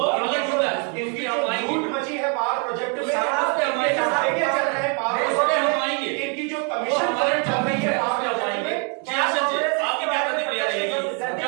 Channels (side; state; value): left; quieter; 35.5 dB